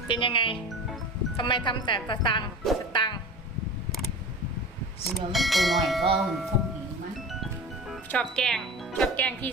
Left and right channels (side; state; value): both; normal; correlation 0.33